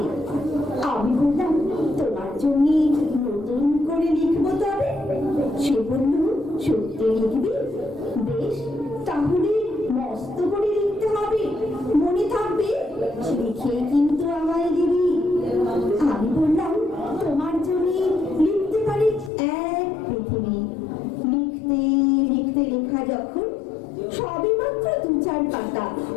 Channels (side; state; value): right; drops out; at 19.3 s